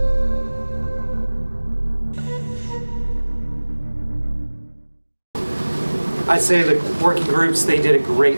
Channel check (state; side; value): inverted; both; correlation -1.00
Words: I'd say the working groups, they did a